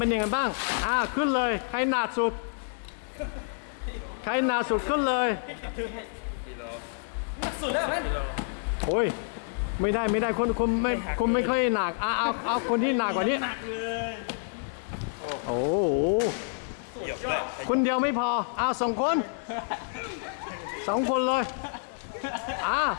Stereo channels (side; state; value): right; silent; 59 dB below the other